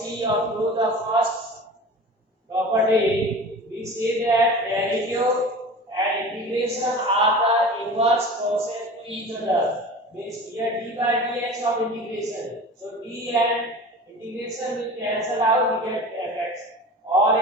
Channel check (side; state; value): both; normal; correlation 0.36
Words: up to the first property. We say that derivative and integration are the inverse process to each other. Means here d by dx of integration. So d and integration will cancel out, we get fx. Or